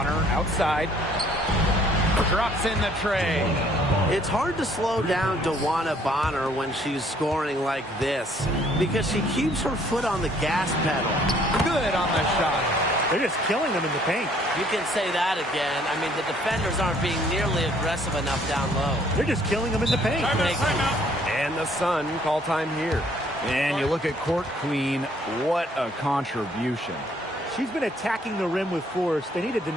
outside. Drops in the tray. It's hard to slow down DeWanna Bonner when she's scoring like this because she keeps her foot on the gas pedal. Good on the shot. They're just killing them in the paint. You can say that again. I mean, the defenders aren't being nearly aggressive enough down low. They're just killing them in the paint. And the Sun call time here. And you look at Court Queen, what a contribution. She's been attacking the rim with force. They need to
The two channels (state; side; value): normal; both; correlation 0.62